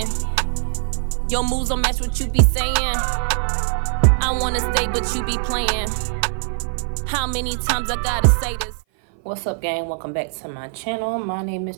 Your moves don't match what you be saying. I wanna stay, but you be playing. How many times I gotta say this? What's up, gang? Welcome back to my channel. My name is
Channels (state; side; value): silent; left; 57 dB below the other